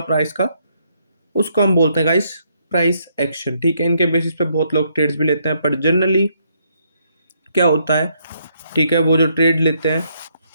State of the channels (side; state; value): both; inverted; correlation -0.73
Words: प्राइस का, उसको हम बोलते हैं गाइस प्राइस एक्शन। ठीक है, इनके बेसिस पे बहुत लोग ट्रेड्स भी लेते हैं, पर जनरली क्या होता है, ठीक है, वो जो ट्रेड लेते हैं,